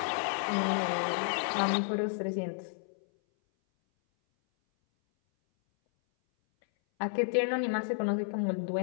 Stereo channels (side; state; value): right; silent; 57 dB below the other